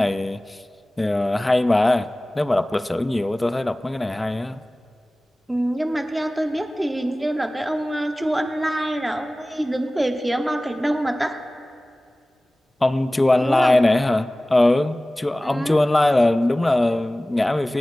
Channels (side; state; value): both; normal; correlation 0.98